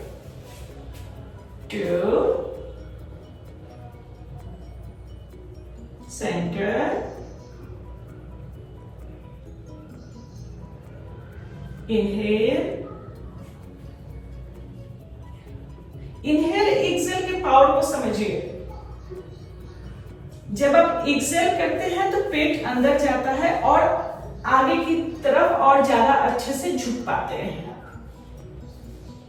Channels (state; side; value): identical; both; correlation 1.00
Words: 2 centre, inhale, inhale exhale के पावर को समझिए। जब आप एक्सहेल करते हैं तो पेट अंदर जाता है और आगे की तरफ और ज्यादा अच्छे से झुक पाते हैं।